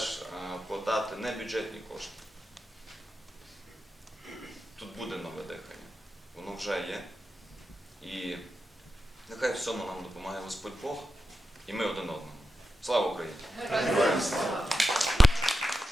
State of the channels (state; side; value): normal; both; correlation 0.89